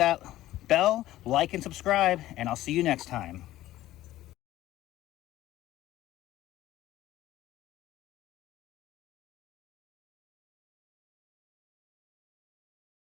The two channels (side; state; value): right; quieter; 15.0 dB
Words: bell, like, and subscribe, and I'll see you next time.